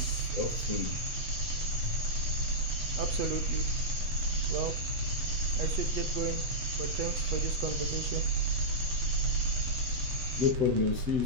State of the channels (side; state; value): left; late; 8.3 ms